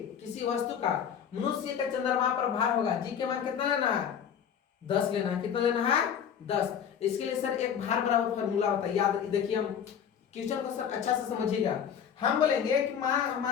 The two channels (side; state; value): right; quieter; 8.2 dB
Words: किसी वस्तु का मनुष्य का चंद्रमा पर भार होगा, जी के मान कितना लेना है 10 लेना है, कितना लेना है 10। इसके लिए सर एक भार बराबर फार्मूला होता है, याद देखिए, हम क्वेश्चन को सर अच्छा से समझिएगा। हम बोलेंगे कि